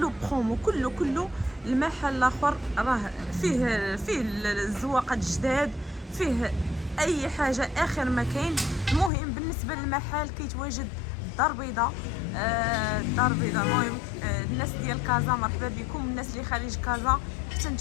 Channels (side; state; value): right; drops out; at 9.1 s